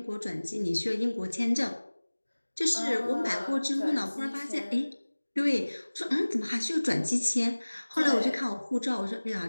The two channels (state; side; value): inverted; both; correlation -1.00